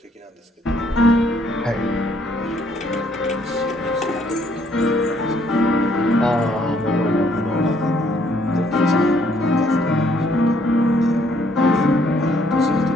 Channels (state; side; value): normal; both; correlation 0.67